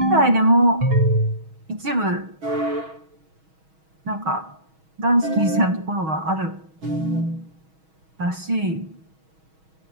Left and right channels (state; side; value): late; left; 6.3 ms